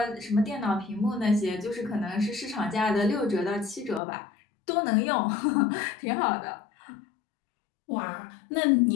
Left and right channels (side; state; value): right; drops out; at 4.0 s